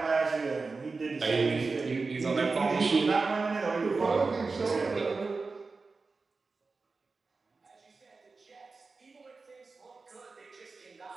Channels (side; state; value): left; quieter; 4.1 dB